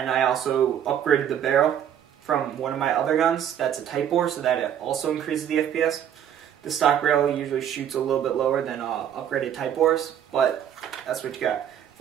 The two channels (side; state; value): left; quieter; 9.7 dB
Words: I also upgraded the barrel from one of my other guns. That's a Type bore, so that it also increases the FPS. The stock barrel usually shoots a little bit lower than upgraded Type bores, but that's what you got.